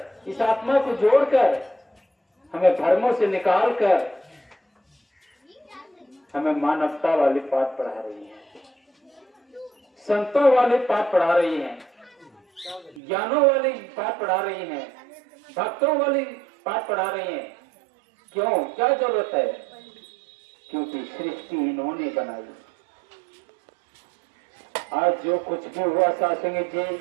इस आत्मा को जोड़कर हमें धर्मों से निकालकर हमें मानवता वाले पाठ पढ़ा रही है, संतों वाले पाठ पढ़ा रही हैं, ज्ञानों वाली पाठ पढ़ा रही हैं, भक्तों वाली पाठ पढ़ा रही हैं। क्यों, क्या जरूरत है? क्योंकि सृष्टि इन्होंने बनाई। आज जो कुछ भी हुआ सासंग जी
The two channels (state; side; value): drops out; left; at 13.0 s